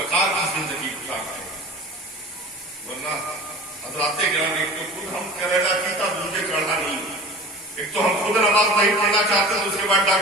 کی زندگی گزارتے ہیں، ورنہ حضرات گرامی ایک تو خود ہم کریلا پیتا دوسرے چڑھا نہیں، ایک تو ہم خود نماز نہیں پڑھنا چاہتے تو اس کے بعد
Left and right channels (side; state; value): both; normal; correlation 0.39